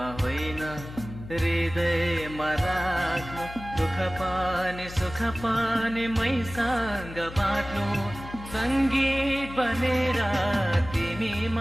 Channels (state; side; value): noise; left; hum, 13 dB below the sound